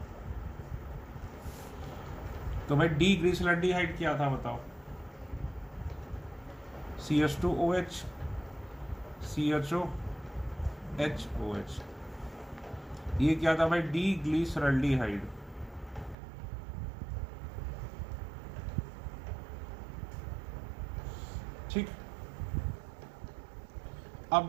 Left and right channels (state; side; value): drops out; left; at 16.2 s